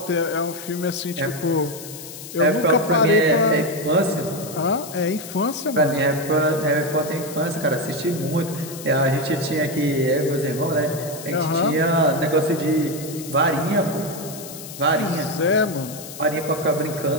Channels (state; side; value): noise; left; hiss, 13 dB below the sound